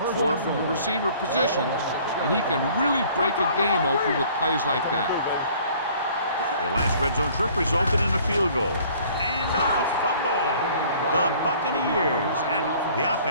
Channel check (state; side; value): inverted; both; correlation -0.54